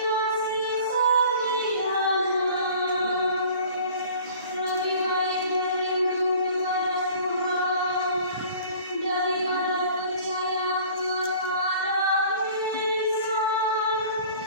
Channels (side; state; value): both; inverted; correlation -0.47